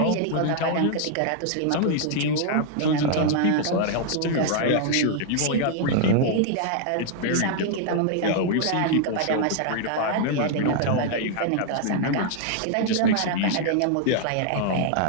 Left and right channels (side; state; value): both; different; correlation 0.00